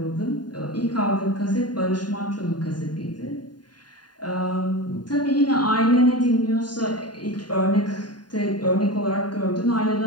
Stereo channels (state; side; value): late; right; 0.70 ms